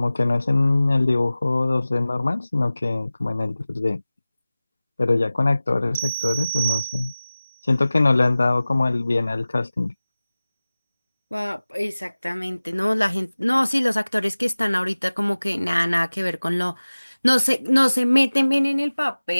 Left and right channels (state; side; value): inverted; both; correlation -0.98